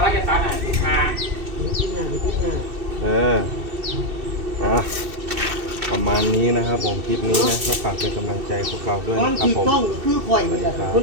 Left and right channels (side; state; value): left; late; 2.7 ms